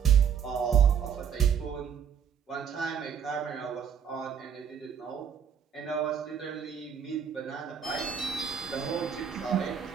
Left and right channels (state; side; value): quieter; left; 7.8 dB